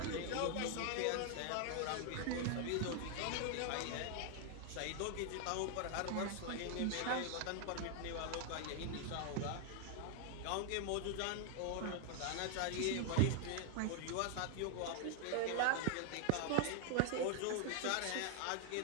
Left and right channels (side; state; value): both; different; correlation 0.00